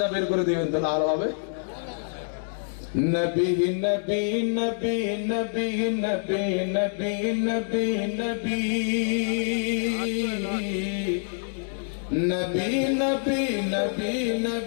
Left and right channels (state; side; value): silent; right; digital silence